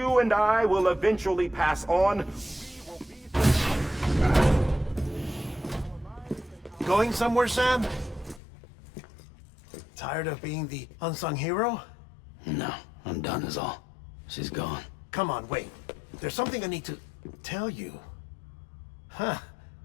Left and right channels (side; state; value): right; drops out; at 8.4 s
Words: and I will eventually pass on, Going somewhere, Sam? Tired of being the unsung hero? No, I'm done is all. She's gone. Come on, wait. There's something I need to tell you. Huh.